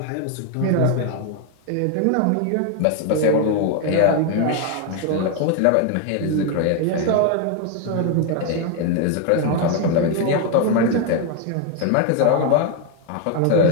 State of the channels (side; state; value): both; different; correlation 0.01